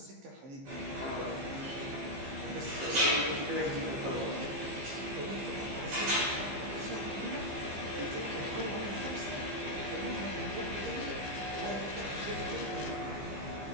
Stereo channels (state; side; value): late; left; 15 ms